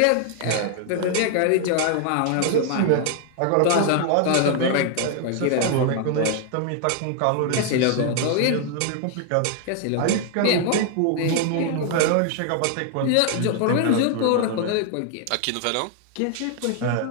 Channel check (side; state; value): both; different; correlation 0.00